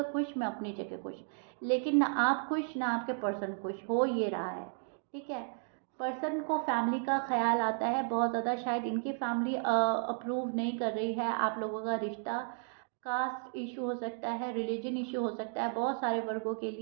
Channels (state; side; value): silent; left; 55 dB below the other